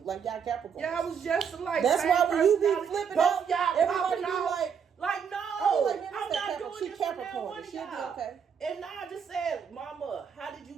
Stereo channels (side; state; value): left; quieter; 7.0 dB